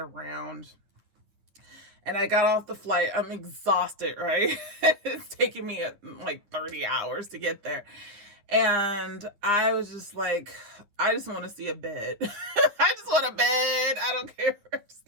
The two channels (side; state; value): left; late; 10 ms